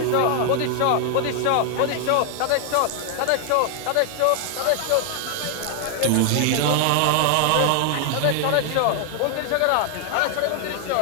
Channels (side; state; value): both; different; correlation 0.00